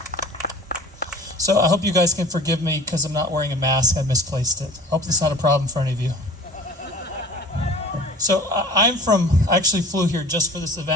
So I hope you guys can forgive me because I'm not wearing a mask. I misplaced it. I hope that's not a problem for any of you. So I actually flew here just for this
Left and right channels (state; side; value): normal; both; correlation 0.43